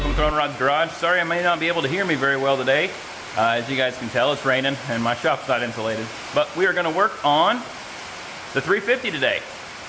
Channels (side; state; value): both; identical; correlation 1.00